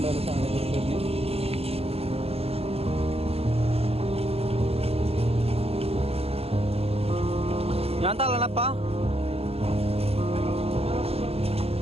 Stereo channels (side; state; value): left; late; 0.29 ms